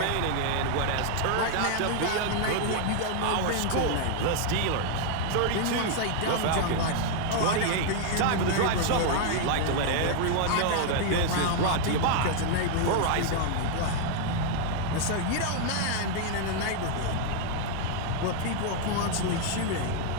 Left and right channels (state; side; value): different; both; correlation 0.00